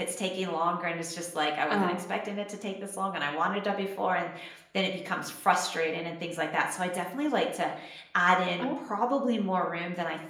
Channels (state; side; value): identical; both; correlation 1.00